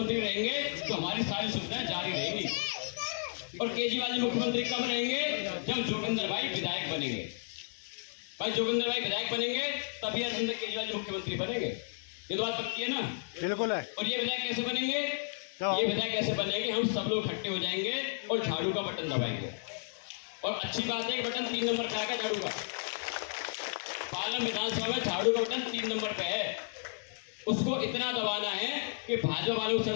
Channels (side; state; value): right; silent; digital silence